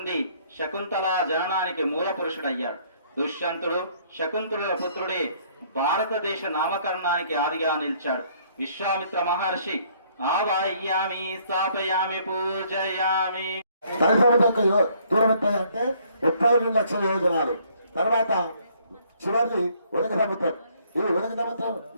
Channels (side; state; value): both; inverted; correlation -0.63